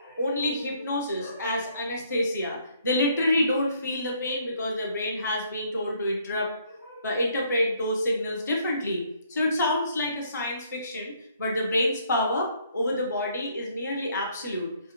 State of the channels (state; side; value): inverted; both; correlation -0.66